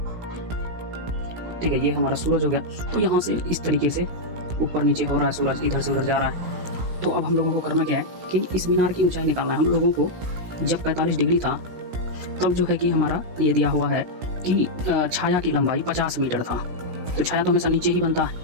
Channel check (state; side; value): late; left; 17 ms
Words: ठीक है, ये हमारा सूरज हो गया। तो यहाँ से इस तरीके से ऊपर नीचे हो रहा है सूरज, इधर से उधर जा रहा है। तो अब हम लोगों को करना क्या है कि इस मीनार की ऊंचाई निकालना है। हम लोगों को जब 45 डिग्री था तब जो है कि हमारा ये दिया हुआ है कि छाया की लंबाई 50 मीटर था, तो छाया तो हमेशा नीचे ही बनता है।